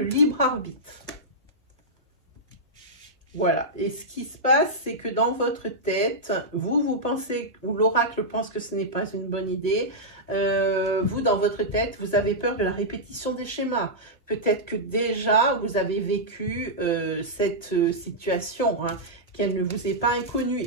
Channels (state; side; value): normal; both; correlation -0.10